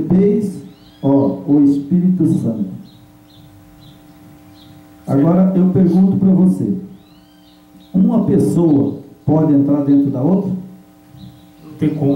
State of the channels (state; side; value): identical; both; correlation 1.00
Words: ó, o Espírito Santo. Agora eu pergunto para você: uma pessoa pode entrar dentro da outra? Não tem